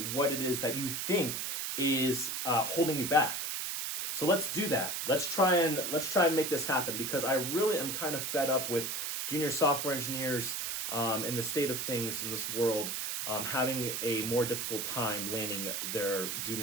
it is that you think is holding you back. So let's do that. Let's try and make this happen, because I really am kind of fed up with junior software engineers in the state of things in this world having a more difficult time landing their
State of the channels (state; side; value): noise; right; hiss, 2 dB below the sound